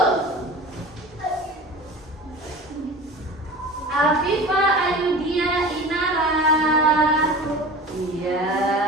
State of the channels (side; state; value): both; normal; correlation 0.36